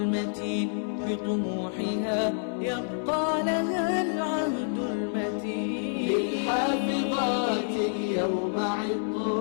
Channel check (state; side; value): silent; right; 59 dB below the other